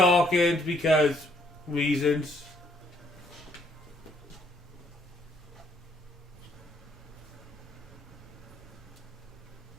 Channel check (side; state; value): both; normal; correlation 0.67